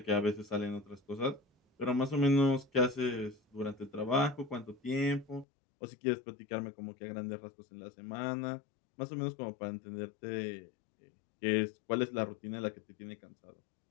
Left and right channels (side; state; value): right; drops out; at 5.5 s